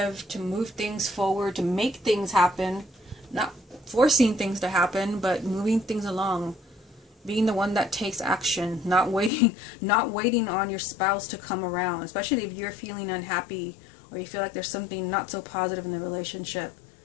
to move things forward, to make things happen, not forcing things to happen, but moving things along. Being the one that takes action, not waiting on your spouse to come around, especially if you're feeling unhappy or you feel like there's something not so positive in the relationship.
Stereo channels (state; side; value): drops out; right; at 9.3 s